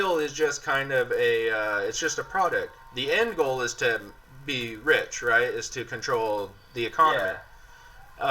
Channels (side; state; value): both; identical; correlation 1.00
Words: is just kind of it's just a product. The end goal is to be rich, right? Is to control the economy.